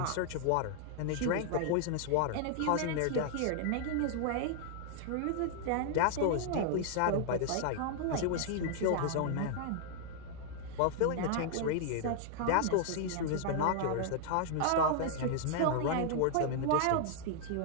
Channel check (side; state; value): both; different; correlation -0.01